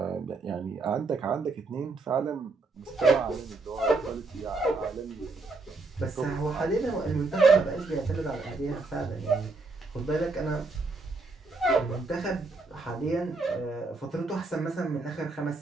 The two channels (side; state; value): left; quieter; 3.6 dB